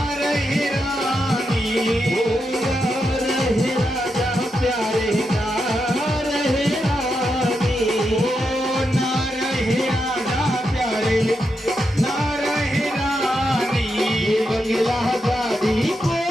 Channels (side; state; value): both; normal; correlation 0.85